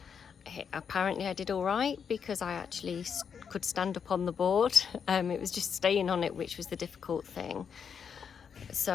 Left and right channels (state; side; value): quieter; right; 6.9 dB